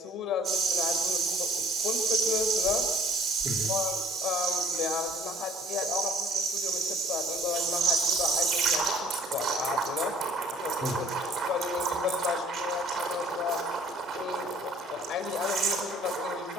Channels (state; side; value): normal; both; correlation 0.55